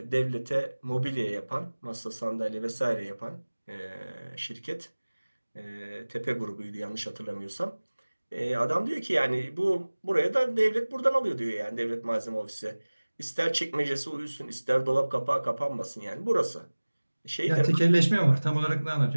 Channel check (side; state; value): both; inverted; correlation -1.00